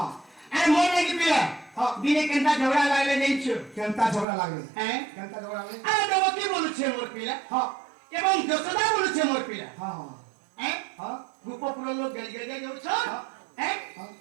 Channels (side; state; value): left; drops out; at 4.2 s